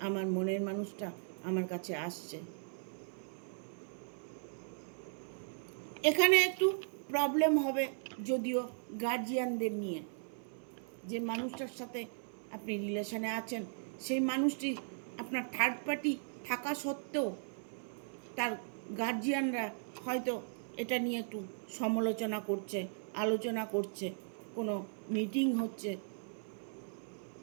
আমার মনের মানুষটা আমার কাছে আসছে। এখানে একটু প্রবলেম হবে যদিও গার্জিয়ানদের নিয়ে। যে মানুষটার সাথে আপনি রিলেশনে আছেন, সেই মানুষটি আপনার থার্ড পার্টি থাকা সত্ত্বেও তার গার্জিয়ানরা হয়তো এটা নিয়ে একটু সমালোচনা করছে, আলোচনা করছে, কোনো মিটিং হচ্ছে,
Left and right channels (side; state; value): left; silent; 53 dB below the other